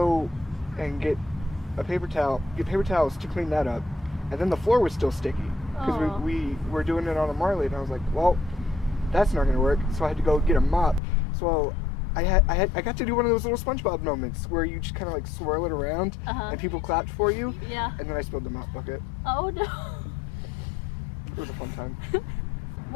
and get paper towels to clean that up, and then the floor was still sticky because Aw. we were doing it on a Marley, and I was like, well, that's not gonna work. So I had to go get a mop. So I got to do one of those little SpongeBob moments where you just kind of like swirl it around, Uh-huh. and people clapped for you, Yeah. and then I spilled the mop bucket. Oh no. It was a fun time.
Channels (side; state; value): right; drops out; at 11.0 s